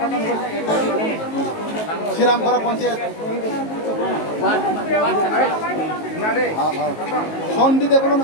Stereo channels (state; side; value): late; right; 19 ms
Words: Siramkhara panchayat সন্ধি দেব